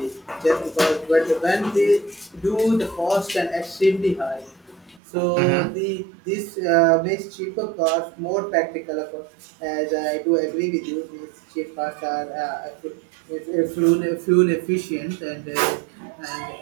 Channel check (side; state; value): left; drops out; at 5.0 s